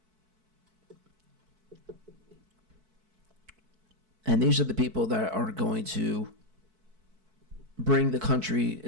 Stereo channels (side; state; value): left; late; 4.6 ms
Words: And these are the people that are going to bring the country